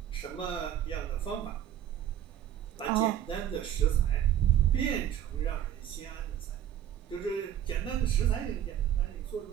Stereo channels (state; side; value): quieter; left; 10.9 dB